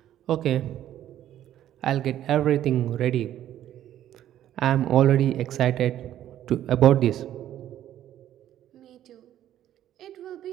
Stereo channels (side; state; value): left; quieter; 11.9 dB